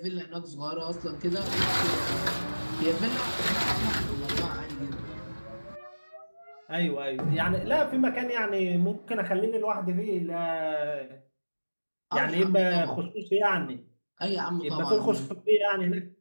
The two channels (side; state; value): both; inverted; correlation -1.00